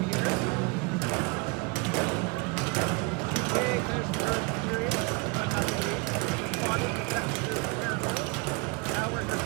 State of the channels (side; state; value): left; quieter; 28.4 dB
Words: here. Okay, there's the first period, but not the lead. On in the second period here. Now we're here